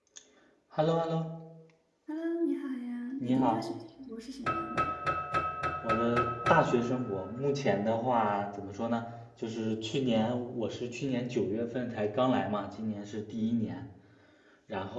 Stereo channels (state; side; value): identical; both; correlation 1.00